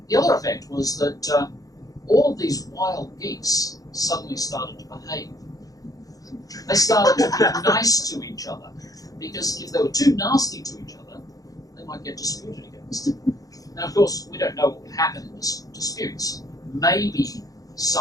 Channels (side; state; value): right; late; 0.17 ms